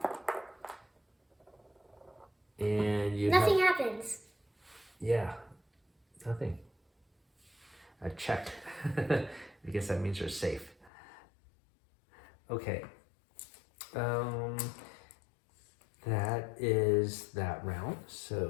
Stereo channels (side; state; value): right; drops out; at 10.9 s